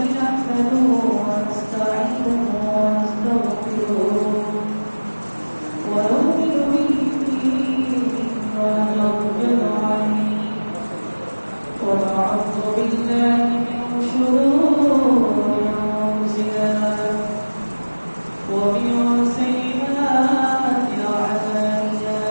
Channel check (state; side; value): inverted; both; correlation -1.00